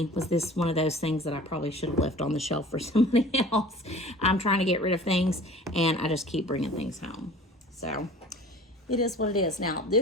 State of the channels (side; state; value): both; normal; correlation 0.44